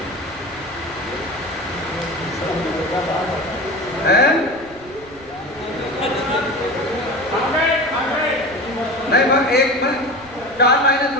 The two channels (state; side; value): noise; right; rumble, 23 dB below the sound